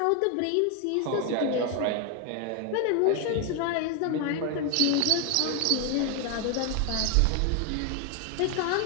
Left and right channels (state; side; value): different; both; correlation 0.01